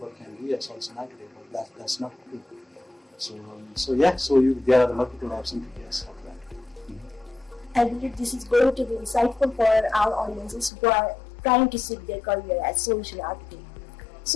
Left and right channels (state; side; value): drops out; right; at 10.7 s